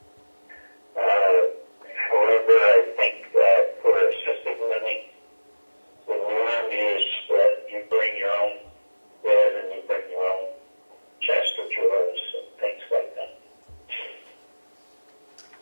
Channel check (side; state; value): both; inverted; correlation -1.00